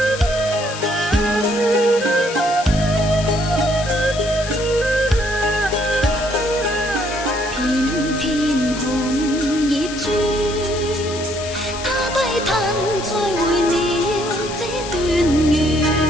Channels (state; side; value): noise; left; hiss, 10 dB below the sound